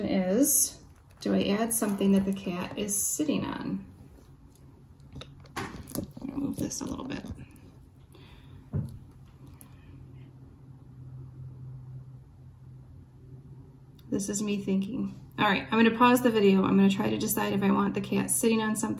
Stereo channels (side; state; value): both; identical; correlation 1.00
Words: is, do I add something that the cat is sitting on? I'll move this a little bit. This is me thinking. All right, I'm gonna pause the video. I'm gonna try to decide if I want the cat sitting on